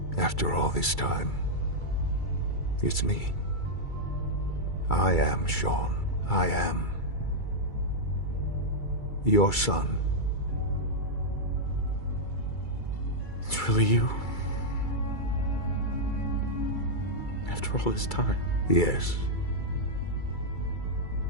After all this time. It's me. I am Shaun. I am your son. It's really you? After all this time? Yes.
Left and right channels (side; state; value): right; late; 2.3 ms